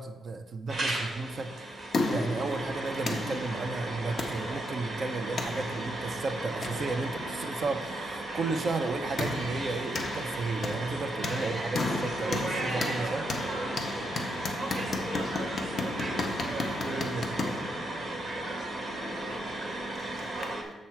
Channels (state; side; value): normal; both; correlation 0.80